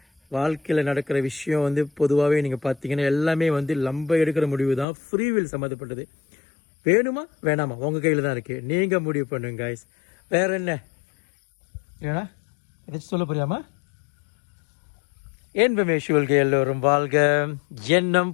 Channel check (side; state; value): right; drops out; at 4.9 s